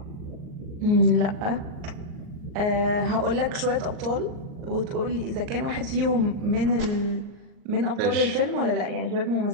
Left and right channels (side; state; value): left; late; 38 ms